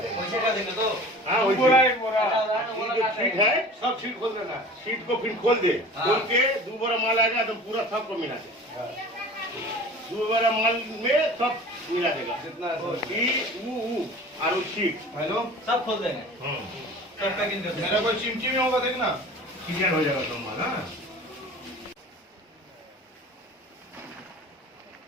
देगा। पैसे का देंगे तो हाँ वही बोरा एक बोरा जो सीट है सब सीट खोल देना। सीट को फिर खोल दे। खोल के 2 बोरा माल आएगा तो पूरा सबको मिला दे। 2 बोरा माल में सब मिला देगा जितना और सीट हेलो सब खोल देंगे। सब पैकिंग कर देंगे। मेरा कोई चिमची में होगा देखना क्लियर हो जाएगा तुम माल। हाँ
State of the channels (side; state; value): both; normal; correlation 0.41